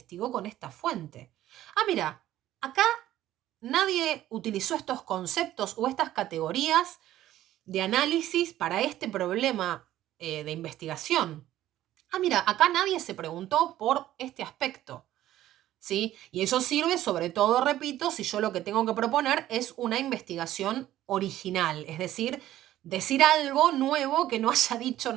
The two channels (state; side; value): quieter; left; 13.6 dB